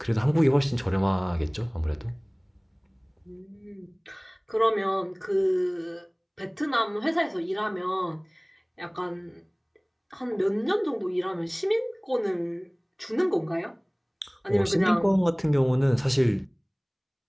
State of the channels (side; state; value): both; identical; correlation 1.00